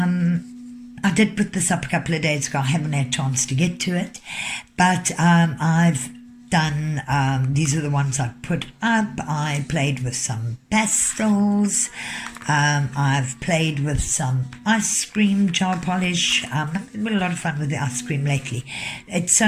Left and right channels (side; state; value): both; identical; correlation 1.00